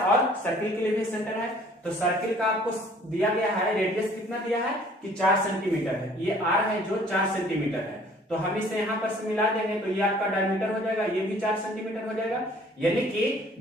सर्किल के लिए भी सेंटर है। तो सर्किल का आपको दिया गया है, रेडियस कितना दिया है कि 4 सेंटीमीटर है, ये आर है जो 4 सेंटीमीटर है, तो हम इसे यहाँ पर से मिला देंगे तो ये आपका डायमीटर हो जाएगा, ये भी 4 सेंटीमीटर हो जाएगा, यानी कि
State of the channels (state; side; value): normal; both; correlation 0.55